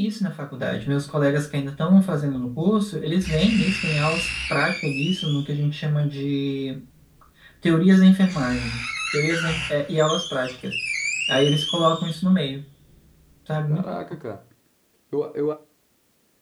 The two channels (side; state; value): both; identical; correlation 1.00